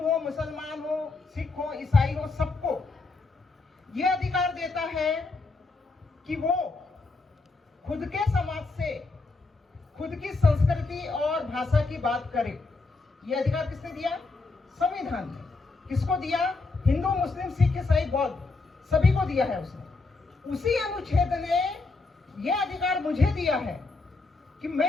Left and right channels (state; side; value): quieter; right; 3.7 dB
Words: हो, मुसलमान हो, सिख हो, ईसाई हो, सबको यह अधिकार देता है कि वो खुद के समाज से, खुद की संस्कृति और भाषा की बात करे। यह अधिकार किसने दिया? संविधान ने। किसको दिया? हिंदू, मुस्लिम, सिख, ईसाई, बौद्ध, सभी को दिया है उसने। उसी अनुच्छेद ने यह अधिकार मुझे दिया है कि